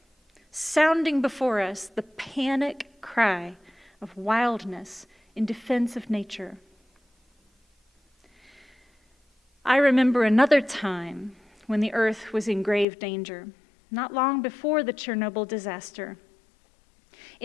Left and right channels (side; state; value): right; drops out; at 12.9 s